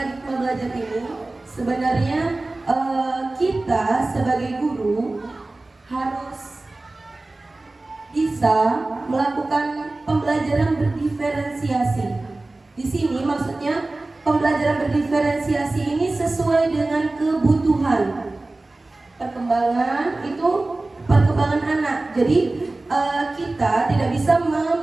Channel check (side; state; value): left; quieter; 3.0 dB